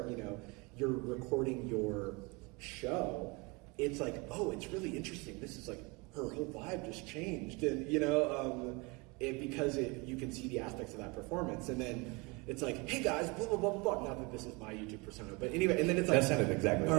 you're recording your show, it's it's really interesting. This is her whole vibe just changed. And, because you can see the aspects of that performance. And then it's hey guys, blah, blah, blah, blah. Not that this is my YouTube persona, but anyway, and then it's that sounded exactly all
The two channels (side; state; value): left; quieter; 27.5 dB